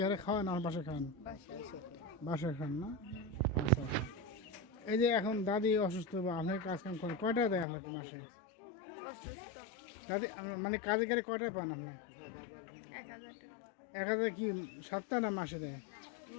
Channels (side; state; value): right; drops out; at 7.7 s